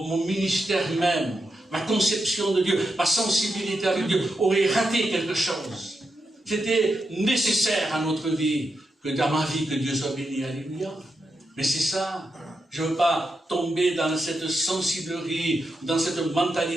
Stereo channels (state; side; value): normal; both; correlation 0.86